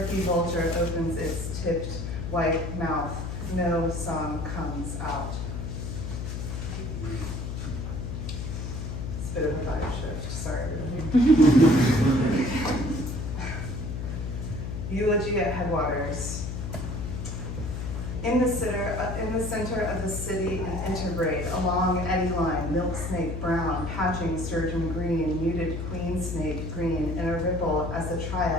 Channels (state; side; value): noise; left; hum, 5 dB below the sound